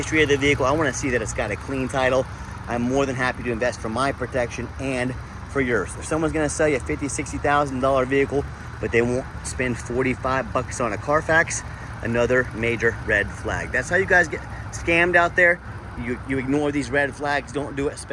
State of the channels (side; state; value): both; identical; correlation 1.00